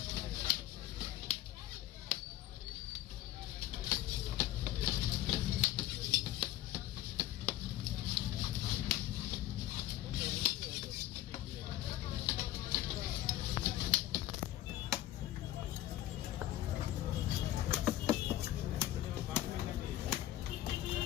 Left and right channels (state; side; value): quieter; right; 14.0 dB